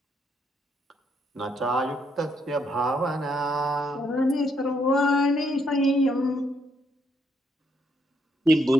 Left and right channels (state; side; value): normal; both; correlation 0.73